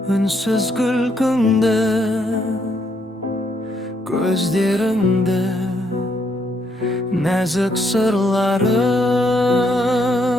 үнсіз күлкіңді, көздеріңді, нәзік сырлары.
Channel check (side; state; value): both; normal; correlation 0.73